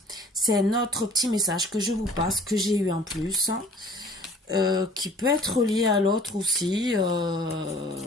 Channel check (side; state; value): both; normal; correlation 0.50